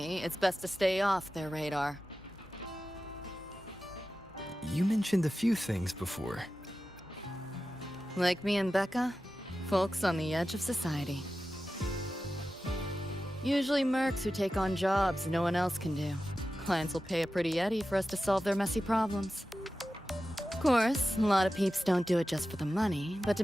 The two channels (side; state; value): both; normal; correlation 0.93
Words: it's best to stay off their radar. You mentioned a few things before. Like me and Becca, folks on the edge of society. Usually mercs who take on jobs no one else can do. Clients will pay a pretty eddy for us to solve their messy problems. Of course, a lot of peeps don't do it just for the money, but to